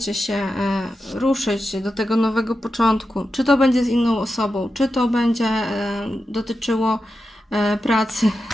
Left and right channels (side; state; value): both; normal; correlation 0.90